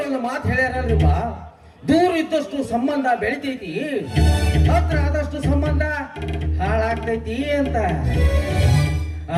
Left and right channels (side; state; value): both; identical; correlation 1.00